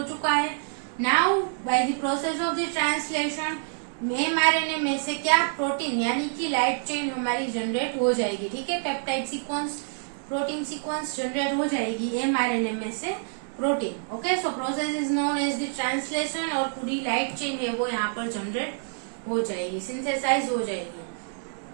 चुका है। Now by the process of the translation mRNA में से क्या, प्रोटीन यानी कि लाइट चेन हमारी जनरेट हो जाएगी। ठीक है, peptide sequence, protein sequence generate हो जाएगी एमआरएनए में से protein. Okay, so process is known as the translation और पूरी लाइट चेन है वो यहाँ पर जनरेट हो जाएगी, सिंथेसाइज हो जाएगी।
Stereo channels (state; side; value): silent; left; 60 dB below the other